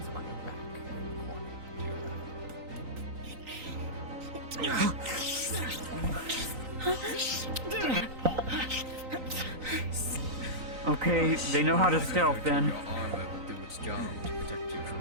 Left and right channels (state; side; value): late; left; 3.9 ms